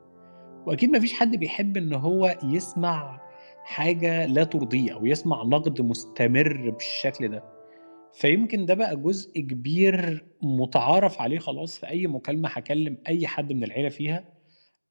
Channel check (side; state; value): both; inverted; correlation -1.00